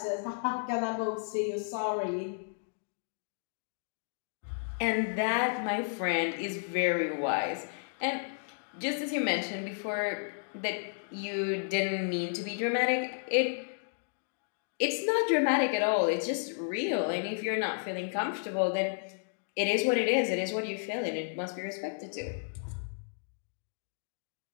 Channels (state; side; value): silent; right; digital silence